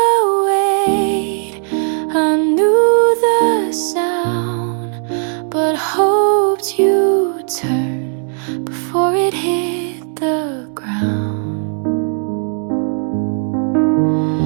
weight, I knew the sound, but hoped you'd turn before it hit the ground.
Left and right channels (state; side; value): silent; left; 56 dB below the other